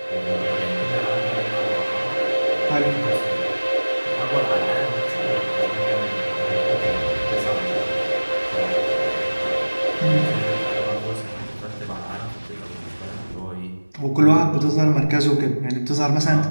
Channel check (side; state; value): both; inverted; correlation -1.00